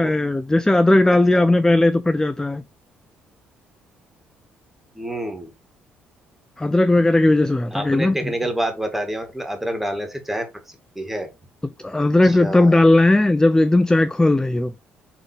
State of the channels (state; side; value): normal; both; correlation 0.97